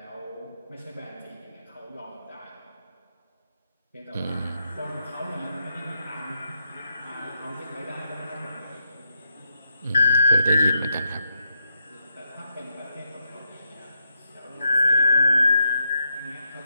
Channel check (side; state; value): both; inverted; correlation -0.82